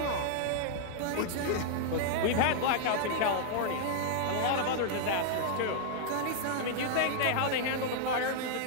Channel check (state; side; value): different; both; correlation -0.01